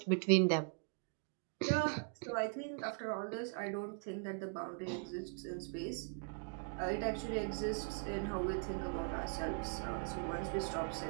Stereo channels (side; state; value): left; silent; 51 dB below the other